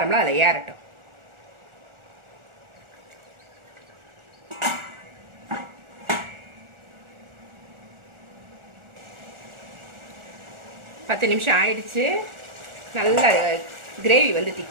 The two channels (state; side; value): late; left; 1.4 ms